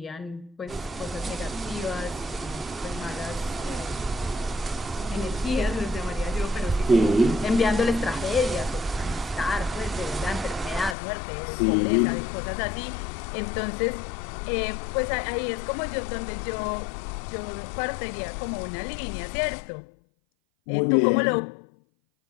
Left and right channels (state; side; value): drops out; right; at 11.0 s